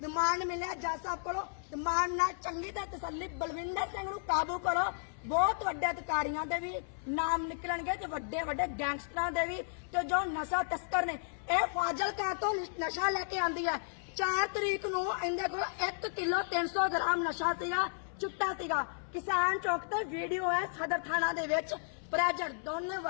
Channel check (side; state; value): right; silent; 55 dB below the other